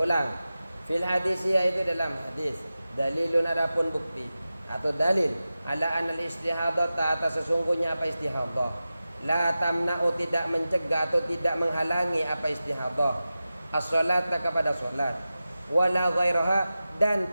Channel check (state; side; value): inverted; both; correlation -0.94